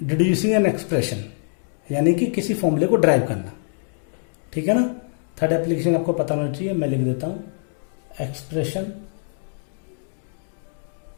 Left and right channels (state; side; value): silent; right; digital silence